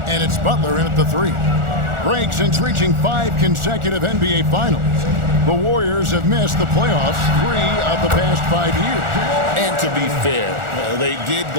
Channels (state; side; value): late; left; 1.4 ms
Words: and it's Butler in at the 3. Greg, since reaching 5 consecutive NBA Finals, the Warriors have missed the playoffs 3 of the past 5 years. And to be fair, they did